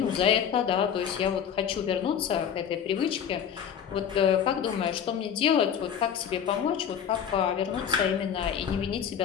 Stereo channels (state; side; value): quieter; right; 8.4 dB